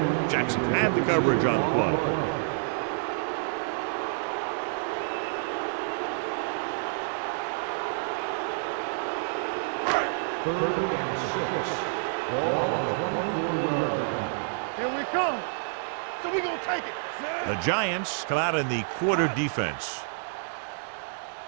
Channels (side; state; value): left; silent; 59 dB below the other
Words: Jackson had the coverage on the play. Third and 6. Ball on the 24-yard line. Here we come. So we gonna take it. The Giants come out in the quarter defense. You gotta believe it. It's